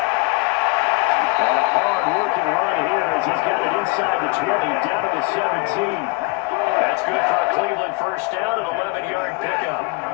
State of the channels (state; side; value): quieter; right; 26.7 dB